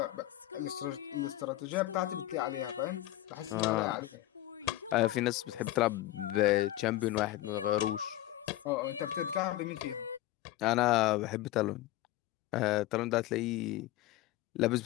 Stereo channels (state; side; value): quieter; right; 15.4 dB